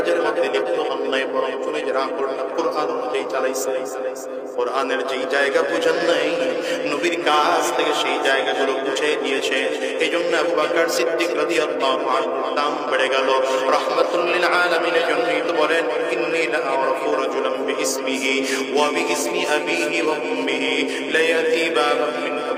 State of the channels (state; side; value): identical; both; correlation 1.00